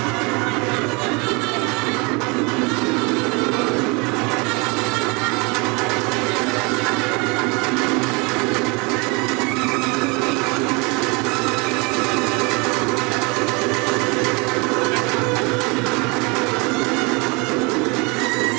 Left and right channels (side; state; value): left; quieter; 29.0 dB